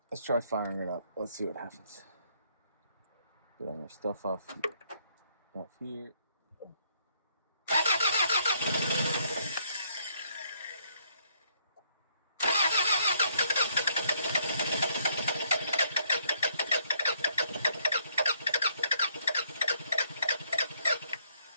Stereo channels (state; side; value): inverted; both; correlation -0.69